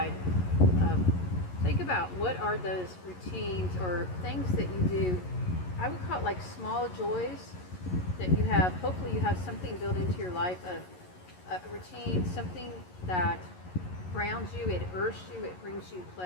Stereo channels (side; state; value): right; late; 11 ms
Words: think about what are those routines or things that you do. I would call it like small joys that you have. Hopefully you have something built into your life, a routine, something that grounds you, it earths you, it brings you